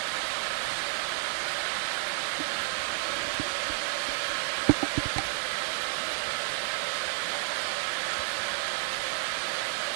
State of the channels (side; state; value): left; silent; 57 dB below the other